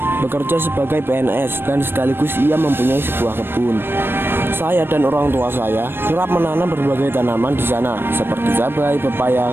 bekerja sebagai PNS dan sekaligus ia mempunyai sebuah kebun. Saya dan orang tua saya kerap menanam berbagai tanaman di sana seperti cabai,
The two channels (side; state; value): left; late; 0.10 ms